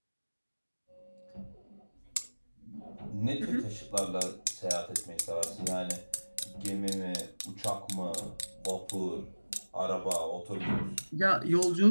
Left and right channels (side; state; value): both; inverted; correlation -1.00